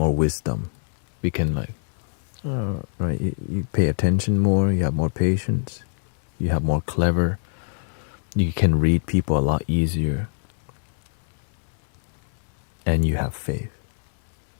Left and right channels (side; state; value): right; silent; 62 dB below the other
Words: wisdom. We can right, you pay attention more, you have more patience, you have more clever, you can read people a lot easier, and you have faith.